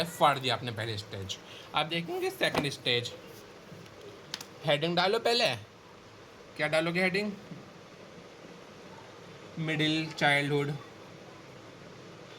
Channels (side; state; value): both; identical; correlation 1.00